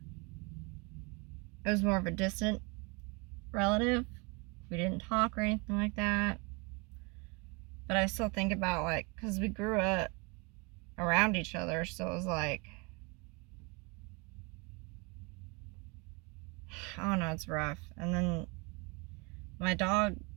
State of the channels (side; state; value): left; quieter; 29.4 dB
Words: was more of a distant relative. We didn't talk or anything like that. But I still think about, like, because we grew up around each other, so it was like, I don't know, it's rough. And then my dog,